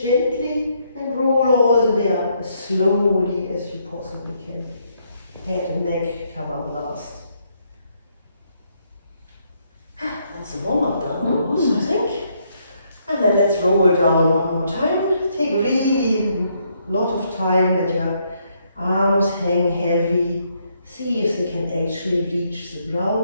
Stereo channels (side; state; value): both; inverted; correlation -0.73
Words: gently and roll all the way up as slowly as you possibly can. Head and neck come up last. That's a warm-up done almost, I think. And then let's roll down one more time. Take really a lot of time, let your arms hang heavy. See if they can actually reach the